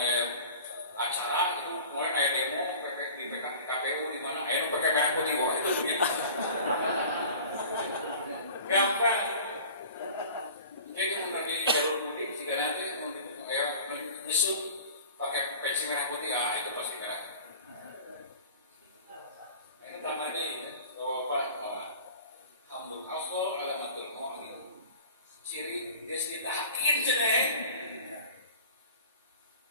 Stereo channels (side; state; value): both; inverted; correlation -0.42